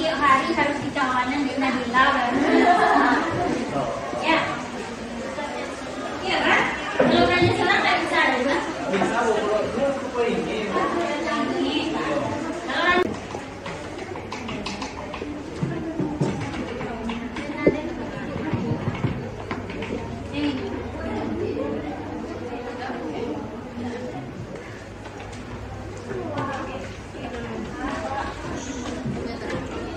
hari harus dicalonin di Nabila baru. Ya. Iya kan? Kalau nanya salah nggak bisa ada kan? Bisa kalau ini.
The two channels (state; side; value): identical; both; correlation 1.00